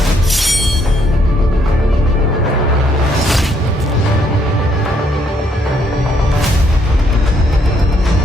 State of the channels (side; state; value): both; normal; correlation 0.70